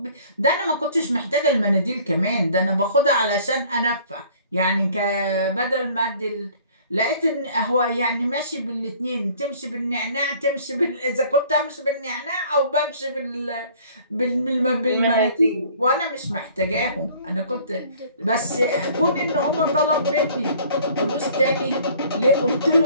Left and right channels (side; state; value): both; inverted; correlation -0.53